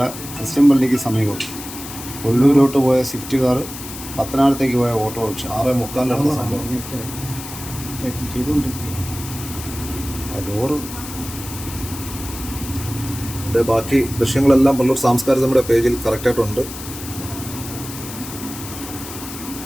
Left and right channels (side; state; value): left; noise; hiss, 11 dB below the sound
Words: ക്രിസ്ത്യൻ പള്ളിക്ക് സമീപം പുനലൂരോട്ട് പോയ സ്വിഫ്റ്റ് കാർ പത്തനാപുരത്തേക്ക് പോയ ഓട്ടോറിക്ഷ 6:45 നടന്ന സംഭവം. ഡോറ് ബാക്കി ദൃശ്യങ്ങളെല്ലാം പുനലൂർ സാംസ്കാരിക നമ്മുടെ പേജിൽ കറക്റ്റായിട്ടുണ്ട്.